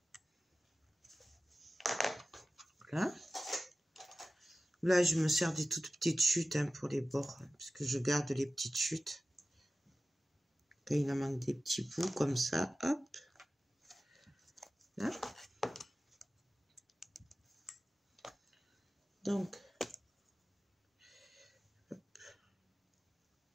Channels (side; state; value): both; normal; correlation 0.95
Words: Là. Là, je me sers des toutes petites chutes hein, pour les bords, hein, parce que je garde les petites chutes. Quand il en manque des petits bouts comme ça, hop. Là. Donc, hop.